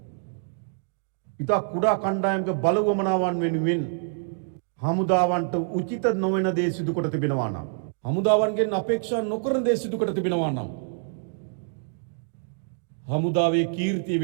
ඉතා කුඩා කණ්ඩායමක බලවමනාවන් වෙනුවෙන් හමුදාවන්ට උචිත නොවන දේ සිදු කොට තිබෙනවා නම්, හමුදාවන්ගෙන් අපේක්ෂා නොකරන දේ සිදු කොට තිබෙනවා නම්, හමුදාවේ කීර්තිය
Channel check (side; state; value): left; silent; digital silence